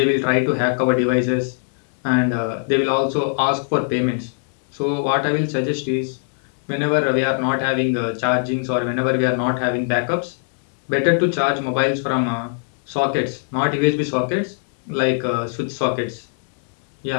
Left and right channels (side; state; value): right; silent; digital silence